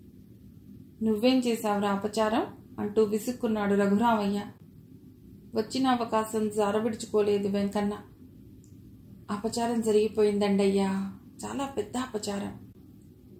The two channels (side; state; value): both; identical; correlation 1.00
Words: నువ్వేం చేశావురా అపచారం అంటూ విసుక్కున్నాడు రఘురామయ్య. వచ్చిన అవకాశం జారవిడుచుకోలేదు వెంకన్న. అపచారం జరిగిపోయిందండయ్యా, చాలా పెద్ద అపచారం.